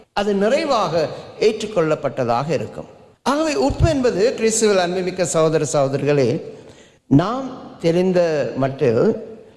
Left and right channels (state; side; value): identical; both; correlation 1.00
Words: அது நிறைவாக ஏற்றுக்கொள்ளப்பட்டதாக இருக்கும். ஆகவே உப்பு என்பது கிறிஸ்துவில் அன்புமிக்க சகோதர சகோதரிகளே, நாம் தெரிந்த மட்டில்